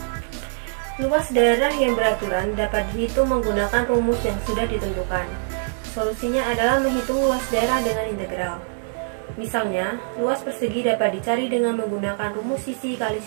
Luas daerah yang beraturan dapat dihitung menggunakan rumus yang sudah ditentukan. Solusinya adalah menghitung luas daerah dengan integral. Misalnya, luas persegi dapat dicari dengan menggunakan rumus sisi kali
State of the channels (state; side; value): silent; left; digital silence